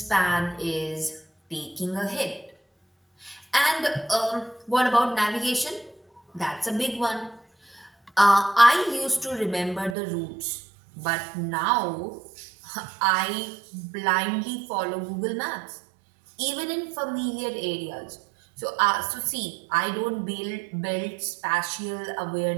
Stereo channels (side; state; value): left; drops out; at 10.0 s